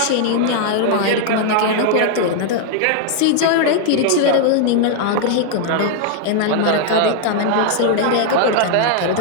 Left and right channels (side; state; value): both; different; correlation 0.00